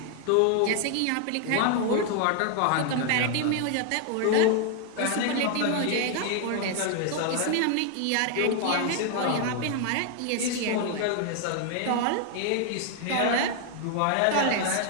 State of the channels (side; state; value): both; different; correlation 0.00